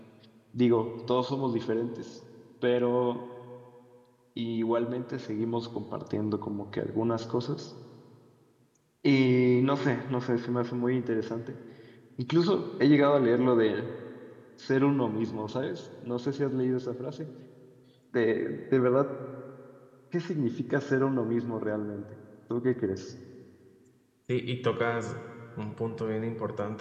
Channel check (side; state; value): both; identical; correlation 1.00